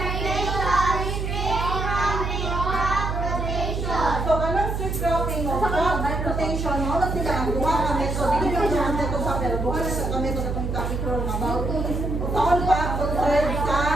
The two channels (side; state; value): right; noise; hum, 2 dB below the sound